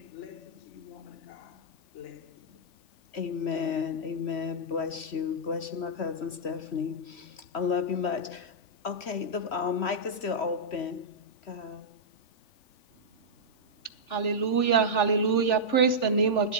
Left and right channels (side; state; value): right; late; 3.4 ms